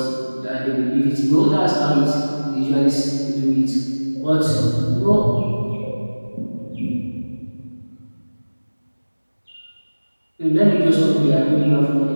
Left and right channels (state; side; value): inverted; both; correlation -1.00